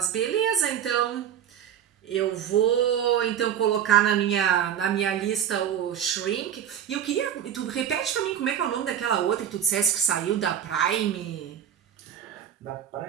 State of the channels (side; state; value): left; quieter; 9.3 dB